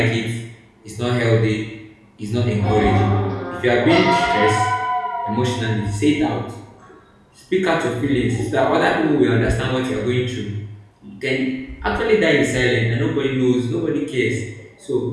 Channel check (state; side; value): identical; both; correlation 1.00